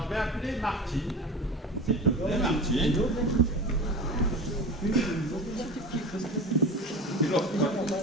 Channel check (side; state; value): both; normal; correlation 0.32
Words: je vais appeler Martine. S'il te plaît, Martine.